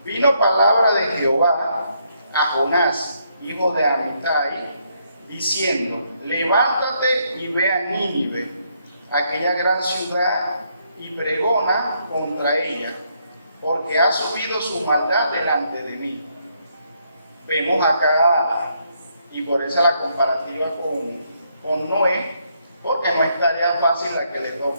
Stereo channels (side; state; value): both; inverted; correlation -0.74